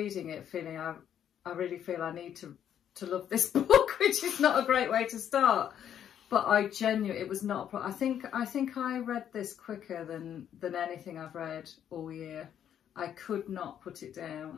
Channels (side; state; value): right; quieter; 9.6 dB